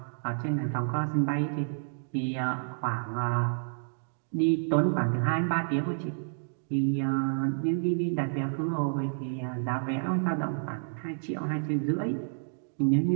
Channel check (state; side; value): silent; left; digital silence